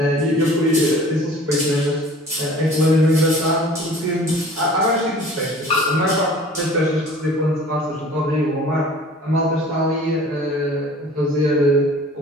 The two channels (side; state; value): both; normal; correlation 0.46